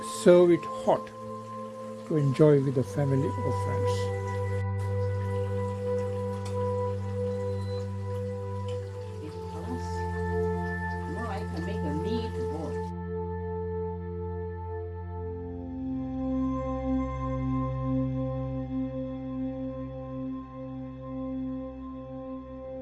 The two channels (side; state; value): both; identical; correlation 1.00